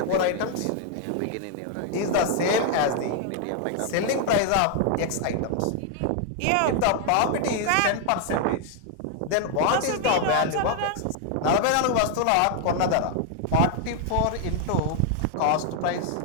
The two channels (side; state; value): both; different; correlation 0.00